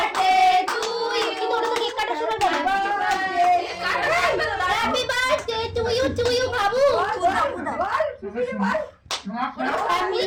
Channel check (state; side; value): identical; both; correlation 1.00